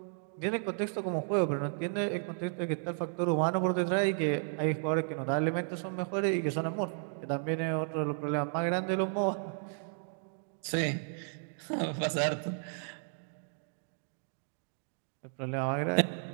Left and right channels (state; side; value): silent; left; 55 dB below the other